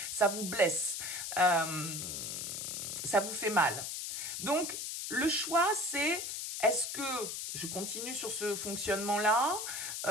ça vous blesse, ça vous fait mal. Donc, le choix, c'est est-ce que je continue sur ce fonctionnement-là?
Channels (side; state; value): left; noise; hiss, 4 dB below the sound